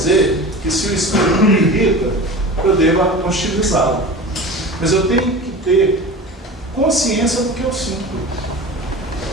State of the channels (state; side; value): normal; both; correlation 0.34